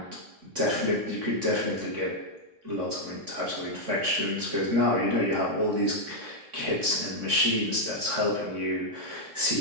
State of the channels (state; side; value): late; left; 3.6 ms